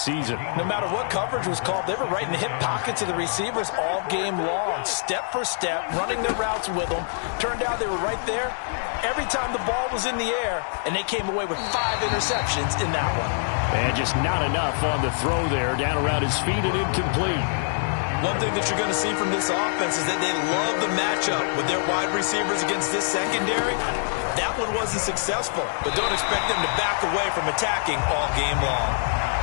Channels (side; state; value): right; silent; digital silence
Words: No matter what coverage was called, they were right in the hip pockets of the receivers all game long, step for step, running their routes with them. Turned out they were right there every time the ball was in the air, and they came away with 5 interceptions in that one. And just not enough on the throw there, down around his feet and incomplete. One thing that you're going to see from this offense is that they love the matchup with their wide receivers against this secondary. That one wasn't successful, but don't expect them to back away from attacking all game long.